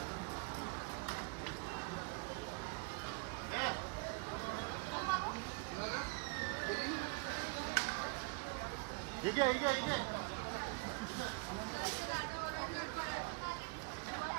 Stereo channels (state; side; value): quieter; left; 29.9 dB